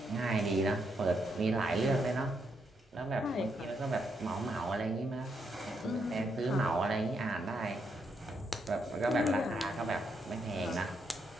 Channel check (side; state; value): both; normal; correlation 0.78